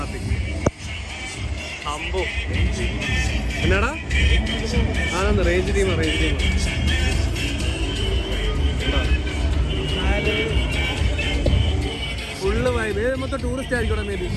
അമ്പോ എന്നാടാ ആണെന്ന് റേഞ്ച് ടീം ഫുള്ള് വൈബ്. ഏത് മൊത്തം ടൂറിസ്റ്റ് ആയിരിക്കും മേ ബി.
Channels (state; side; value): identical; both; correlation 1.00